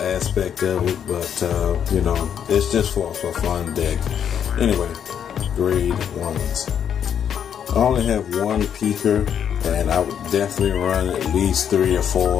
of it, but it's just for a fun deck. Anyway, grade 1s. I only have one peaker, and I would definitely run at least 3 or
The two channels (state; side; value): quieter; right; 8.5 dB